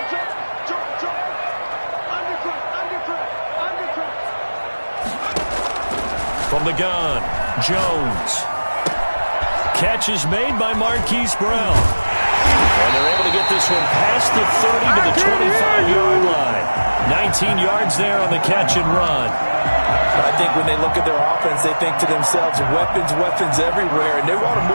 From the gun, Jones. Catch is made by Marquise Brown. And they're able to get this one past the 30 to the 25-yard line. 19 yards there on the catch and run. I think when they look at their offense, they think to themselves, weapons, weapons everywhere, and they want to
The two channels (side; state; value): both; inverted; correlation -1.00